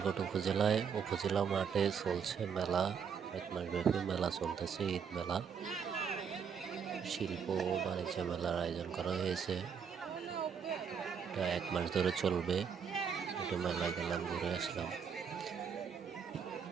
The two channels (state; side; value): quieter; left; 6.9 dB